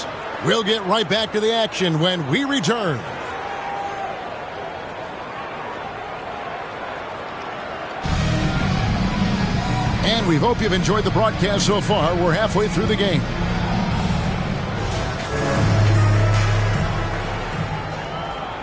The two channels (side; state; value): both; identical; correlation 1.00